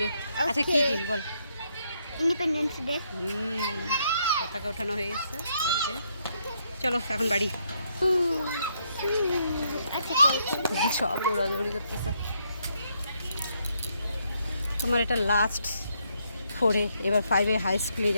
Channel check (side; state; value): both; inverted; correlation -0.75